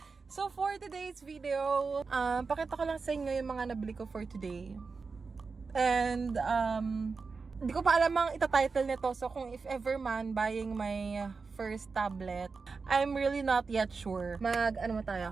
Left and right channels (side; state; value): left; quieter; 4.6 dB